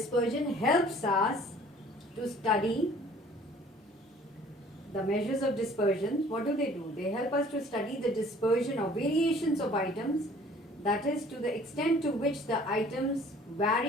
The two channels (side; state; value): both; normal; correlation 0.53